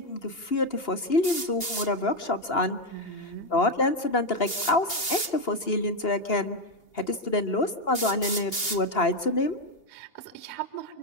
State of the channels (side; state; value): right; late; 2.8 ms